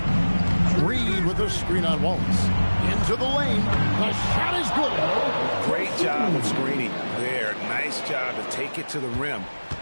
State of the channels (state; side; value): inverted; both; correlation -1.00